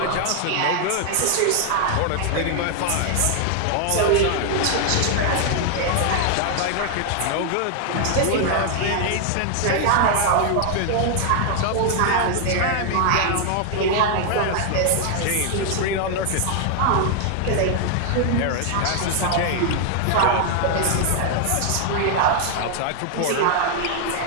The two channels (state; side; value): different; both; correlation 0.00